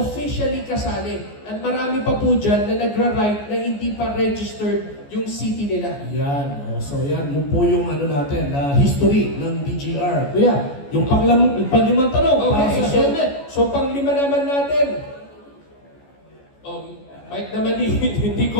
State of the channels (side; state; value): right; late; 14 ms